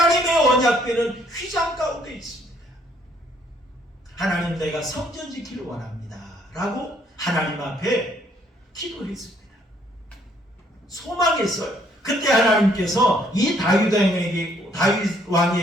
언약궤는 휘장 가운데 있습니다. 하나님, 내가 성전 지키를 원합니다 라고 하나님 앞에 기도했습니다. 소망했어요. 그때 하나님께서 이 다윗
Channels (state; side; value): normal; both; correlation 0.66